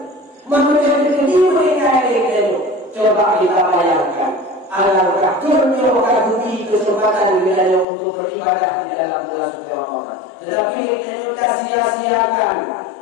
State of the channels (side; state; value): right; drops out; at 7.9 s